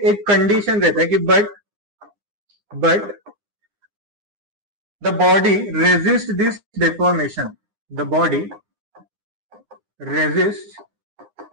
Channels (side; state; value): left; late; 9.8 ms